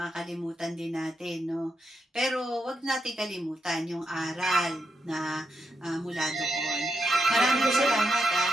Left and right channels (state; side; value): normal; both; correlation 0.84